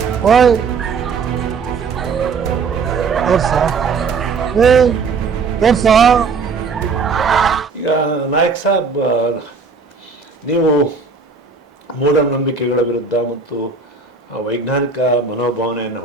ಓಯ್ ತೋರ್ಸ. ಈಗ ನಾಯಕ್ ಸಾಬ್, ನೀವು ಮೂಢನಂಬಿಕೆಗಳ ವಿರುದ್ಧ ಮತ್ತು ವೈಜ್ಞಾನಿಕ ಮನೋಭಾವನೆಯನ್ನು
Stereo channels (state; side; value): quieter; left; 4.9 dB